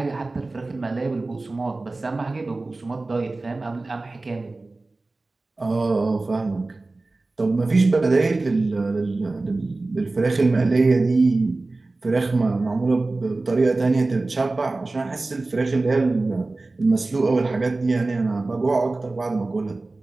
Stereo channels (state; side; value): quieter; left; 3.2 dB